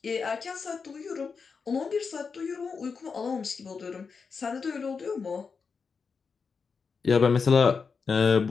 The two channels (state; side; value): quieter; right; 5.3 dB